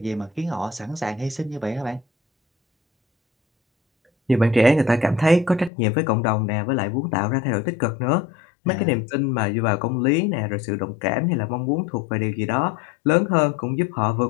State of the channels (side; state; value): right; drops out; at 5.7 s